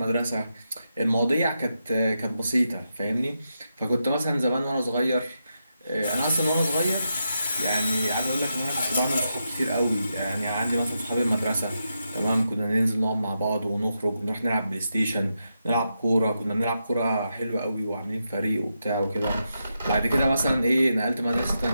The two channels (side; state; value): both; inverted; correlation -0.86